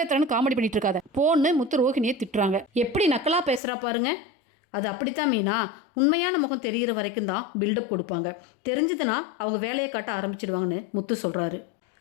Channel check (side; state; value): right; drops out; at 3.6 s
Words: காமெடி பண்ணிட்டு இருக்காத போன்னு முத்து ரோஹிணியை திட்டுறாங்க. எப்படி நக்கலாக பேசுகிறா பாருங்க. அது அப்படித்தான் மீனா, உண்மையான முகம் தெரிகிற வரைக்கும் தான் பில்டப் கொடுப்பாங்க, தெரிஞ்சதுன்னா அவங்க வேலையை காட்ட ஆரம்பிச்சிடுவாங்கன்னு முத்து சொல்கிறாரு.